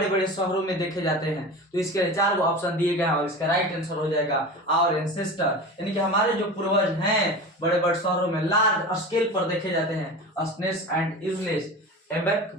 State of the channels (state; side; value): normal; both; correlation 0.31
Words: बड़े शहरों में देखे जाते हैं। तो इसके लिए 4 ऑप्शन दिए गए हैं और इसका राइट आंसर हो जाएगा आवर एंसेस्टर, यानी कि हमारे जो पूर्वज हैं बड़े बड़े शहरों में लार्ज स्केल पर देखे जाते हैं, अस्नेस एंड इजलेस एबेक